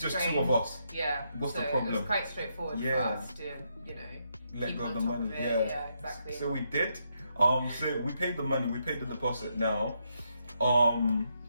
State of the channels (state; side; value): inverted; both; correlation -0.79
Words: just 2 of us. Yeah. What's the problem? It was quite straightforward for us to, let go of the money. Yeah, exactly. So we did. So we paid the money. We paid the deposit. Now,